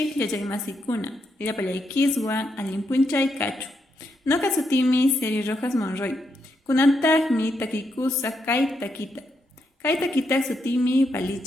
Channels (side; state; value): both; normal; correlation 0.80